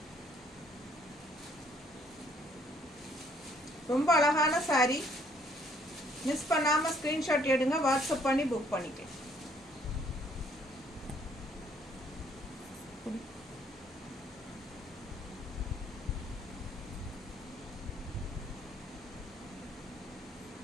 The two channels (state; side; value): normal; both; correlation 0.65